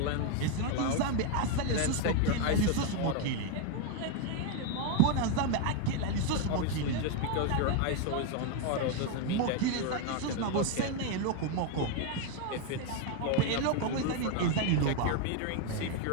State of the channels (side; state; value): both; different; correlation 0.01